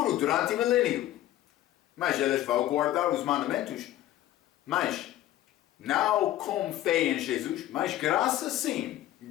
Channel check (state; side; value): quieter; right; 13.8 dB